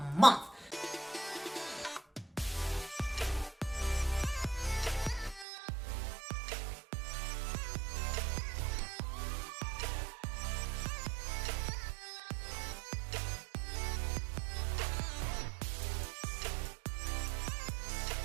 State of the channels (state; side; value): drops out; left; at 5.5 s